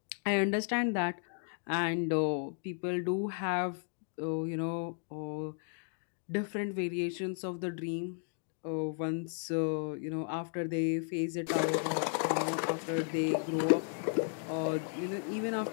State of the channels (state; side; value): silent; right; 55 dB below the other